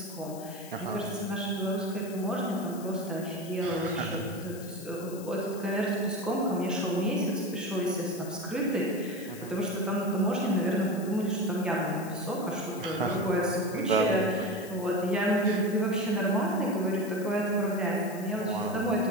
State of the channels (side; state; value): left; noise; hiss, 17 dB below the sound